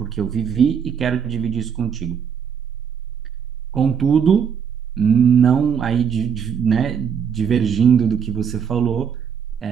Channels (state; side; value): quieter; left; 7.3 dB